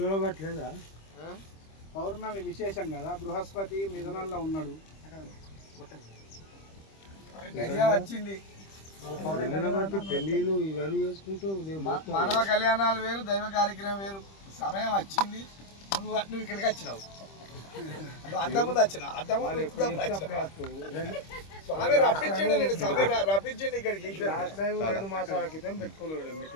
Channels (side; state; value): right; late; 25 ms